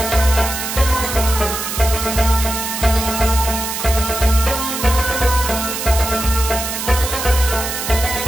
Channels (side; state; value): right; noise; hiss, 5 dB below the sound